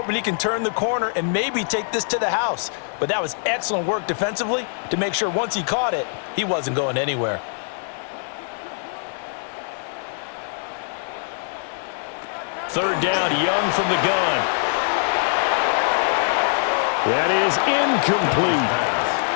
he can turn the corner and maybe take this to the house. But that was excellent work defensively to make sure once he caught it, he wasn't going anywhere. Third down, Young from the gun. That is incomplete.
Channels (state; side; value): silent; right; digital silence